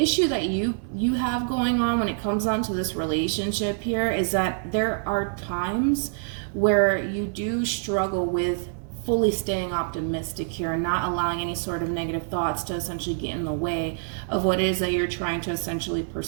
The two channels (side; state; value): left; silent; 61 dB below the other